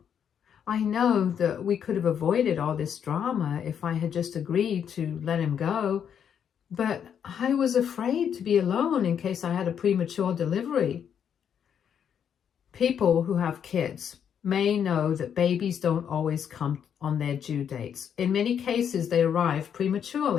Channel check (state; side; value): quieter; right; 8.3 dB